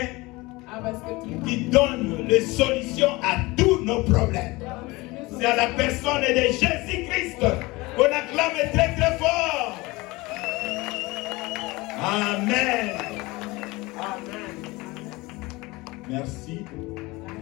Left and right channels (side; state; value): right; quieter; 22.4 dB